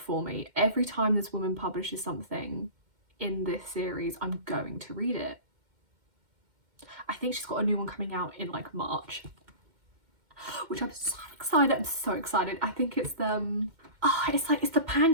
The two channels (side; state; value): left; late; 2.1 ms